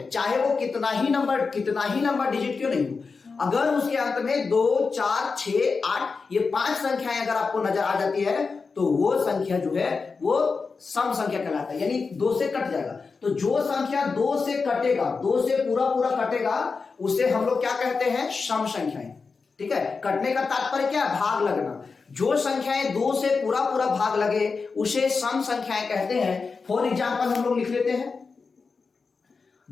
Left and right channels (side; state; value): right; quieter; 4.7 dB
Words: चाहे वो कितना ही नंबर डिजिट क्यों नहीं हो। अगर उसके अंत में 2 4 6 8 ये 5 संख्याएं अगर आपको नजर आ जाती है तो वो संख्या जो है वो सम संख्या कहलाता है, यानी 2 से कट जाएगा। तो जो संख्या 2 से कटेगा, 2 से पूरा पूरा कटेगा, उसे हम लोग क्या कहते हैं? सम संख्याएं, ठीक है। कटने का तात्पर्य क्या है? भाग लगना। जो संख्याएं 2 से पूरा पूरा भाग लगे उसे सम संख्याएं कहते हैं। फॉर एग्जाम्पल हम लोग लिख लेते हैं,